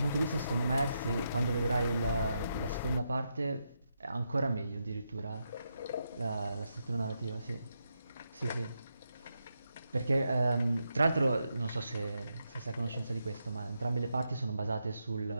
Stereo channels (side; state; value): both; inverted; correlation -0.83